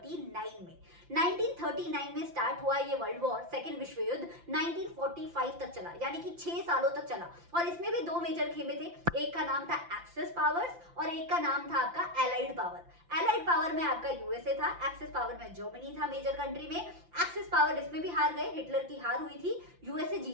में। 1939 में स्टार्ट हुआ ये वर्ल्ड वॉर, सेकेंड विश्व युद्ध 1945 तक चला, यानी कि 6 सालों तक चला। और इसमें भी दो मेजर खेमे थे, एक का नाम था एक्सेस पावर्स और एक का नाम था आपका एलाइड पावर। एलाइड पावर में आपका यूएसए था, एक्सेस पावर में जर्मनी था मेजर कंट्री में। एक्सेस पावर इसमें भी हार गए, हिटलर की हार हुई थी, यूएसए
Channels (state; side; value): late; left; 5.8 ms